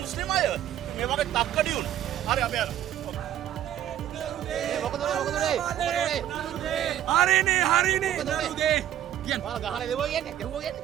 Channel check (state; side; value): quieter; left; 11.5 dB